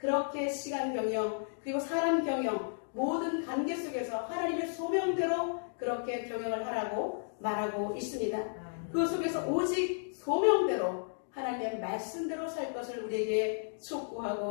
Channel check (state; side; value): silent; right; digital silence